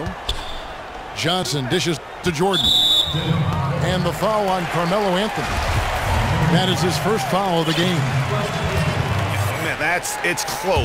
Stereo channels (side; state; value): both; identical; correlation 1.00